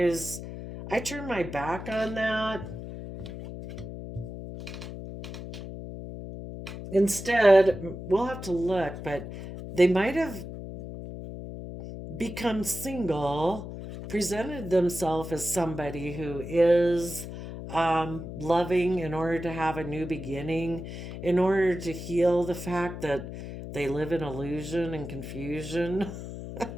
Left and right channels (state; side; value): noise; left; hum, 9 dB below the sound